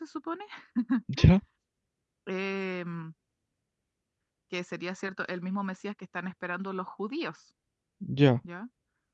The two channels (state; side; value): identical; both; correlation 1.00